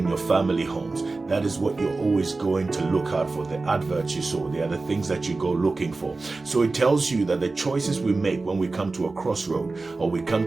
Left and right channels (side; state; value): left; quieter; 3.6 dB